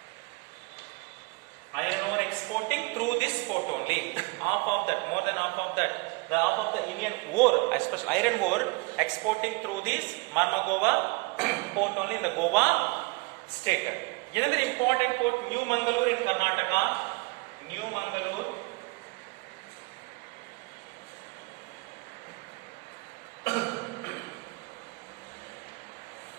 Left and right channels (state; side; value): quieter; left; 28.1 dB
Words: iron ore exporting through this port only. Half of that, more than half of that, the half of the Indian ore, especially iron ore, exporting through this Mormugao port only in the Goa state. Another important port, New Mangalore in Karnataka. New Mangalore.